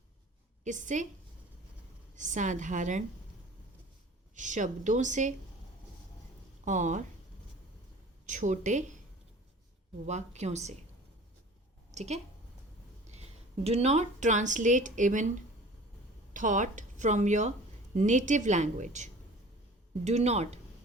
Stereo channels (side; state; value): both; normal; correlation 0.44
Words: किससे, साधारण शब्दों से और छोटे वाक्यों से, ठीक है। Do not translate even thought from your native language. Do not,